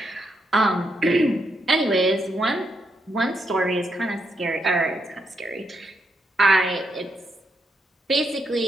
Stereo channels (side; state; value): both; normal; correlation 0.80